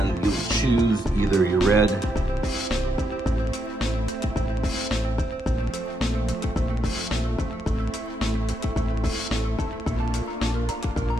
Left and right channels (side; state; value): both; normal; correlation 0.80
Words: you'll choose either your red,